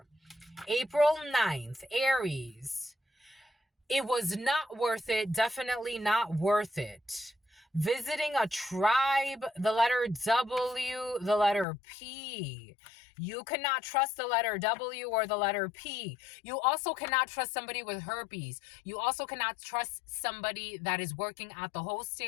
April 9th, Aries. It was not worth it. Definitely not worth it. Visiting a tribe, the letter W, the letter P. You cannot trust the letter W or the letter P. You also cannot trust somebody with herpes. You also cannot trust somebody that is working at the host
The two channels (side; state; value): right; drops out; at 11.7 s